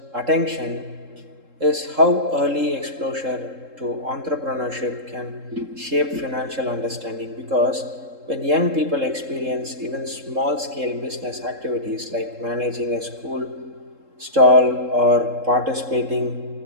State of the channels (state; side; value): late; left; 3.7 ms